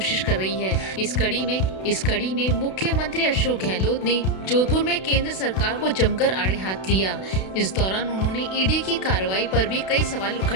कर रही है। इस कड़ी में मुख्यमंत्री अशोक गहलोत ने जोधपुर में केंद्र सरकार को जमकर आड़े हाथ लिया। इस दौरान उन्होंने ईडी की कार्रवाई पर भी कई सवाल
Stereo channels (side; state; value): right; late; 32 ms